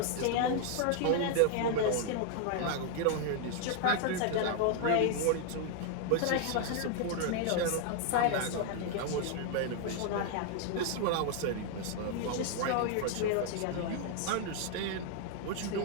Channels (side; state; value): both; different; correlation 0.00